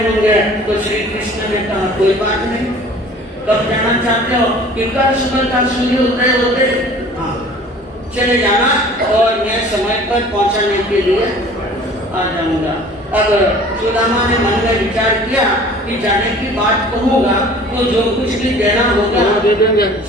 होंगे। तो श्री कृष्ण ने कहा कोई बात नहीं, कब जाना चाहते हो? कि कल सुबह का सूर्य उदय होते चले जाना और मैं समय पर पहुंचाने के लिए आ जाऊंगा। अब सुदामा ने मन में विचार किया कि जाने की बात कहूँगा तो जो कुछ भी देना होगा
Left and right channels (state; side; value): normal; both; correlation 0.47